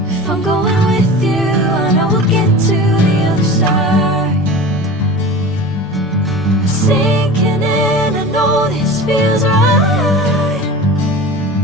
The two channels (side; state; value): both; normal; correlation 0.34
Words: If I'm going with you, I know we'll get to the other side. Sinking in, I know this feels right.